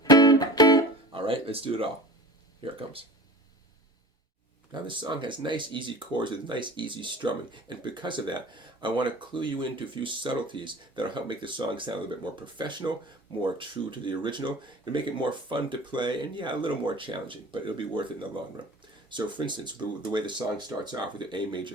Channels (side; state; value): both; normal; correlation 0.38